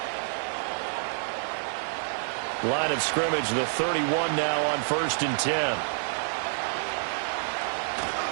Line of scrimmage, the 31 now on 1st and 10.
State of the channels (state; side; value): silent; left; 59 dB below the other